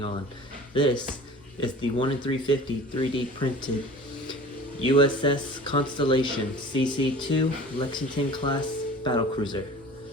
on. This is the 1 in 350 3D printed USS Constellation CC-2 Lexington class battlecruiser.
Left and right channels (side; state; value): both; normal; correlation 0.43